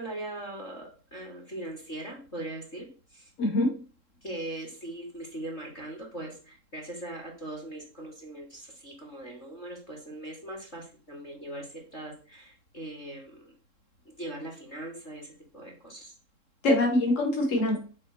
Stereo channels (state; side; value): late; right; 3.7 ms